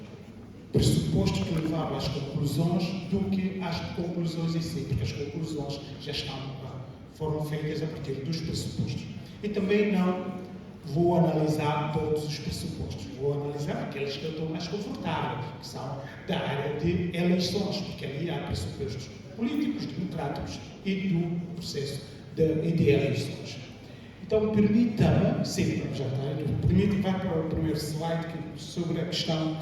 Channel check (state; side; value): identical; both; correlation 1.00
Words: pressupostos que levaram às conclusões do que às conclusões em si, porque as conclusões já foram feitas a partir dos pressupostos. E também não vou analisar todos os pressupostos, vou analisar aqueles que eu estou mais confortável, que são da área de eleições, porque ali há pressupostos políticos, democráticos e do processo de eleições. Então, permita-me, sim, já está, permita-me vai para o primeiro slide sobre a questão